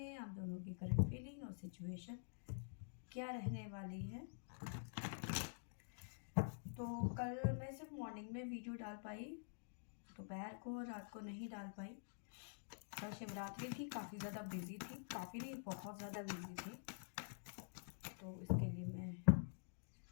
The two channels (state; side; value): silent; right; digital silence